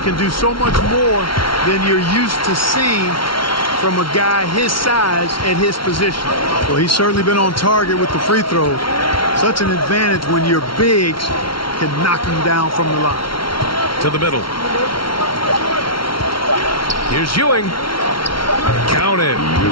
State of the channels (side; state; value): right; late; 0.74 ms